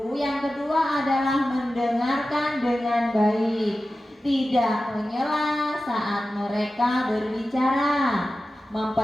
Yang kedua adalah mendengarkan dengan baik, tidak menyela saat mereka berbicara,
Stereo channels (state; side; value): normal; both; correlation 0.94